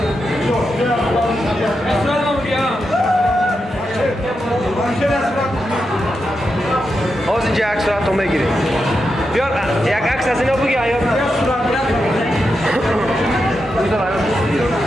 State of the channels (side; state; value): both; normal; correlation 0.87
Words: باز اینجا عکس صورت رو بگیریم بیار یک عکس از اینا بگی آیا